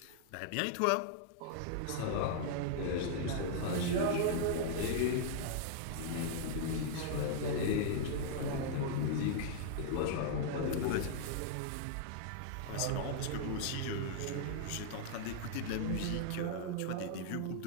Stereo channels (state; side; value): different; both; correlation -0.01